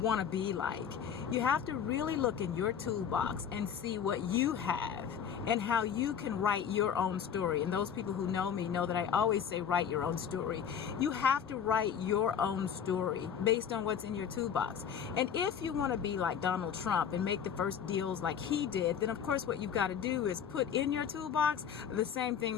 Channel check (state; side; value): quieter; right; 8.0 dB